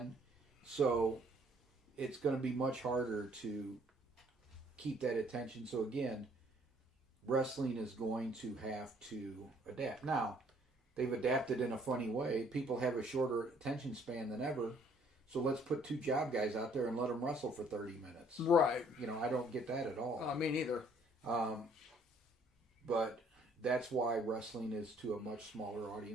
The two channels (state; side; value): normal; both; correlation 0.62